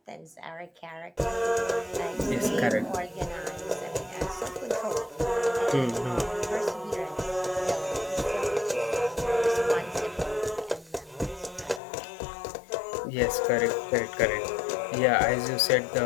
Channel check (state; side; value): drops out; right; at 11.8 s